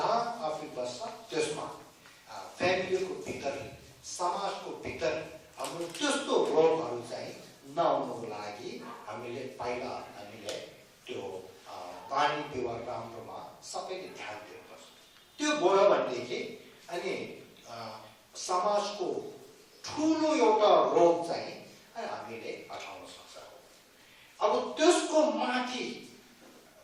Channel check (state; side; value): identical; both; correlation 1.00